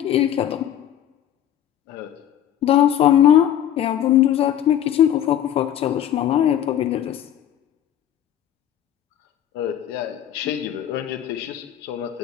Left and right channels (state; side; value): quieter; right; 10.8 dB